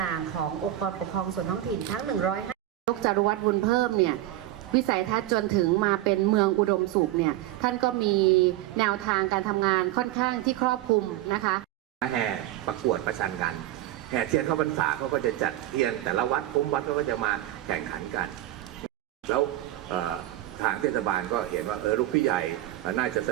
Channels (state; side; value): quieter; left; 14.6 dB